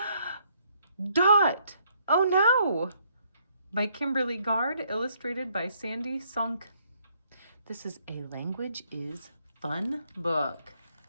Dot. Oh no! By Kimberly Gard, illustrated by Sandy Sunk. This is a Language is Fun book.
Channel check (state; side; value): inverted; both; correlation -0.69